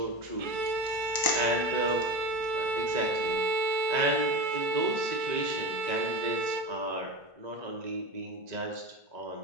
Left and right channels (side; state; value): left; late; 1.9 ms